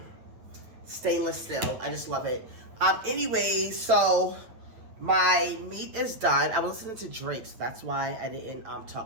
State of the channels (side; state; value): left; late; 9.1 ms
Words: Stainless steel. I just love it. Anyway, so my meat is done. I was listening to Drake, so that's why I didn't